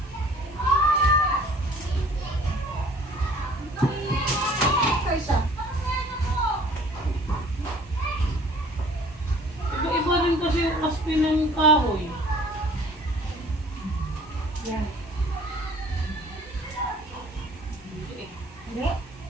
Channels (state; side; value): normal; both; correlation 0.52